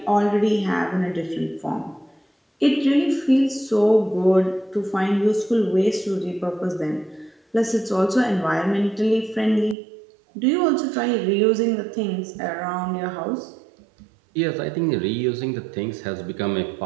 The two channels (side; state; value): left; drops out; at 9.8 s